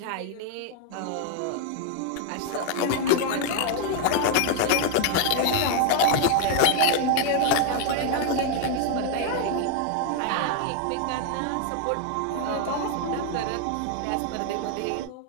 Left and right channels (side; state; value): both; different; correlation 0.00